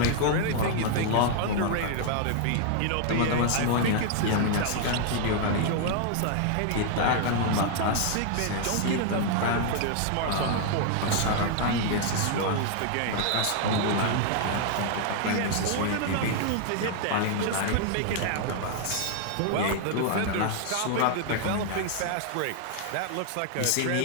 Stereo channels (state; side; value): different; both; correlation 0.00